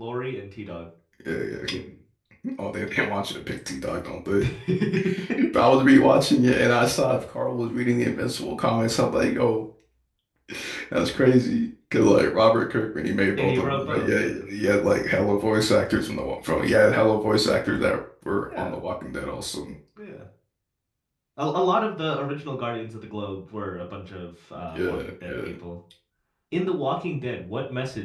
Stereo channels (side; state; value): both; identical; correlation 1.00